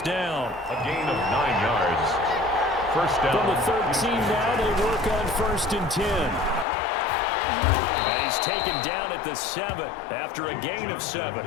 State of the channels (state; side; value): drops out; right; at 6.7 s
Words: down. A gain of 9 yards. First down. From the 13 now, they work on 1st and 10. And he's taken down at the 7 after a gain of 7.